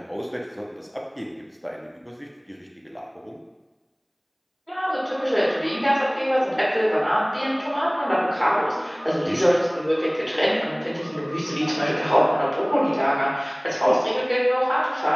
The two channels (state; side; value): identical; both; correlation 1.00